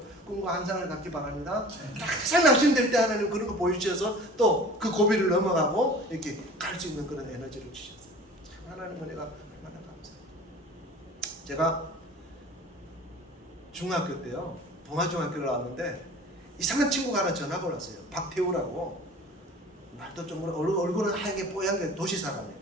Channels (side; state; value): both; normal; correlation 0.43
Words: 꿈과 환상을 갖기 바랍니다. 항상 낙심될 때 하나님 그런 거 보여주셔서 또 그 고비를 넘어가고 이렇게 갈 수 있는 그런 에너지를 주셨어요. 참 하나님 은혜가 얼마나 감사해요. 제가 중학교 때요 봉화중학교를 나왔는데 이상한 친구가 하나 전화가 왔어요. 박태우라고. 말도 좀 얼굴은 하얗게 뽀얀 게 도시 사람이에요.